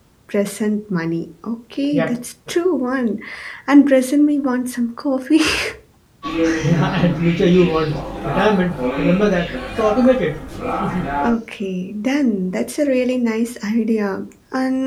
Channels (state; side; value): identical; both; correlation 1.00